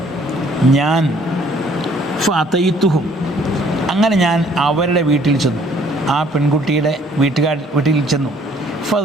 ഞാൻ ഫഅതൈതുഹും, അങ്ങനെ ഞാൻ അവരുടെ വീട്ടിൽ ചെന്നു, ആ പെൺകുട്ടിയുടെ വീട്ടിൽ ചെന്നു.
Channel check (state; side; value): normal; both; correlation 0.60